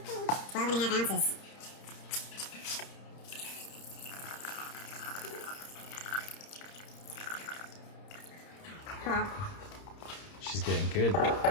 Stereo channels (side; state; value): right; late; 30 ms